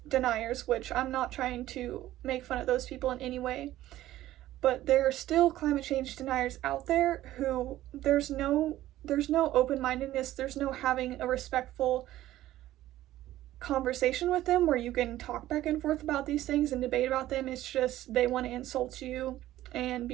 deniers, which I'm not trying to make fun of those people in any way, but there are still climate change deniers out there who there's no open-mindedness, there's no having a respectful conversation with them where you can talk back and forth about these things and debate about them. It's just they want to insult you and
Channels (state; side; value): quieter; left; 14.5 dB